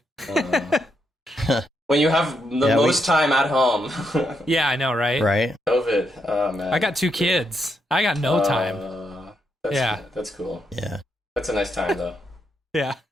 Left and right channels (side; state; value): both; normal; correlation 0.80